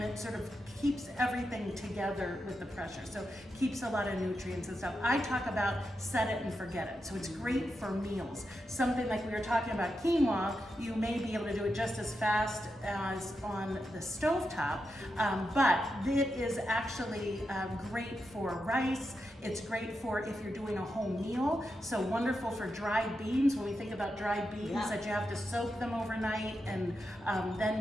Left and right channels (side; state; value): both; normal; correlation 0.87